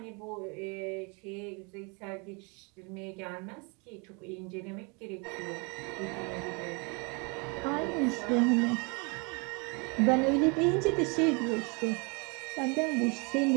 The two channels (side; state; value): left; quieter; 32.3 dB